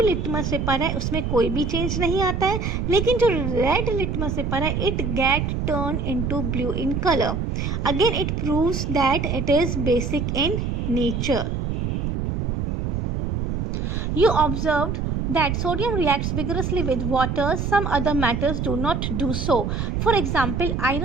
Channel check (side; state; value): right; noise; rumble, 1 dB below the sound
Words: लिटमस पेपर है उसमें कोई भी चेंज नहीं आता है, लेकिन जो रेड लिटमस पेपर है it get turn into blue in colour. Again it proves that it is basic in nature। You observed that sodium reacts vigorously with water, some other metals do not do so. For example,